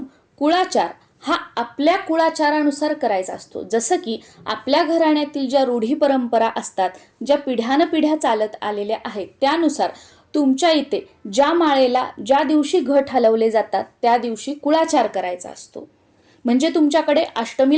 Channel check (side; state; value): both; identical; correlation 1.00